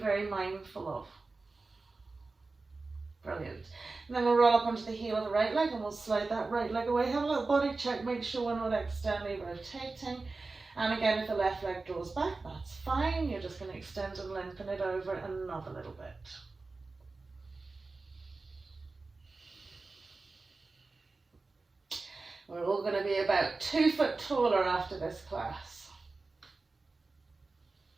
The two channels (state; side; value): quieter; left; 3.7 dB